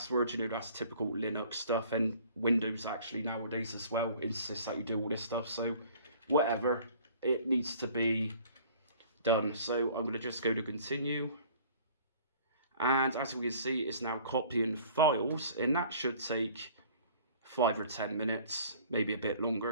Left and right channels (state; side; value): inverted; both; correlation -0.51